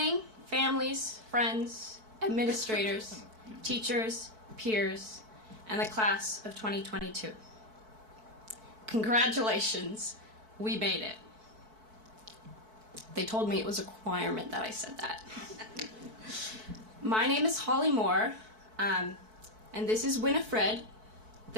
families, friends, administrators, teachers, peers, and the class of 2022. Congratulations, we made it. They told me it was a requirement that I said that. My name is Holly Moore, and this is Winifred,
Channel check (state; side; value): late; left; 4.6 ms